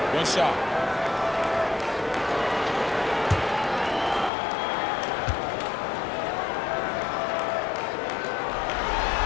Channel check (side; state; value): right; drops out; at 4.3 s